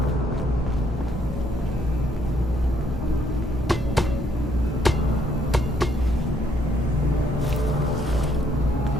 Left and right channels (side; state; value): both; normal; correlation 0.70